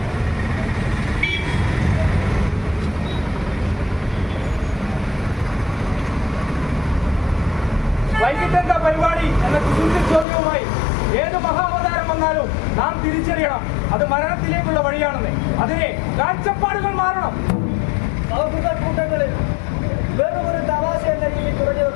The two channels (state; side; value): drops out; right; at 10.2 s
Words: വൈകിട്ടെന്താ പരിപാടി എന്ന കുസൃതി ചോദ്യവുമായി ഏത് മഹാവതാരം വന്നാലും നാം തിരിച്ചറിയണം അത് മരണത്തിലേക്കുള്ള വഴിയാണെന്ന്. അതിനെ കാഴ്ചപ്പാടുകൾ മാറണം. സൗഹൃദ കൂട്ടങ്ങളിൽ വെറും ഒരു തമാശ എന്ന രീതിയിൽ കുറഞ്ഞു